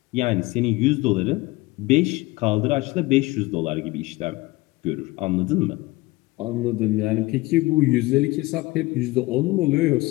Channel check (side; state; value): right; quieter; 21.2 dB